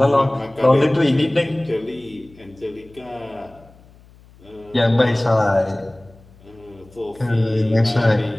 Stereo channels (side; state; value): left; noise; hum, 26 dB below the sound